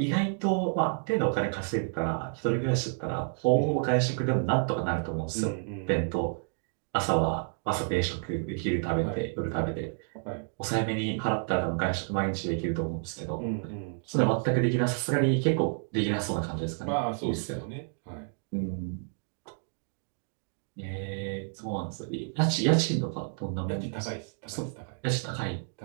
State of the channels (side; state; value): left; silent; 58 dB below the other